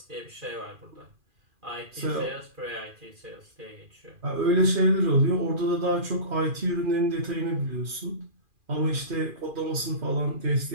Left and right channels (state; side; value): late; left; 2.4 ms